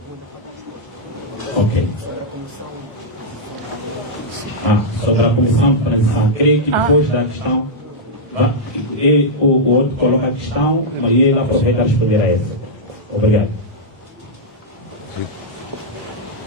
Ok. Sobre a comissão de transição, creio que depois da questão... o outro coloca a questão e ele aproveita a responder a essa. Obrigado.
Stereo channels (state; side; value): normal; both; correlation -0.07